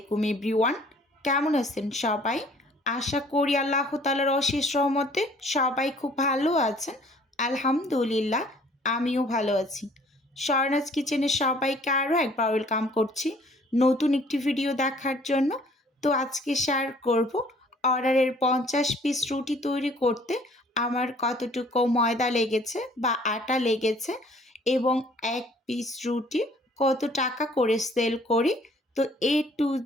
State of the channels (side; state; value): both; normal; correlation 0.56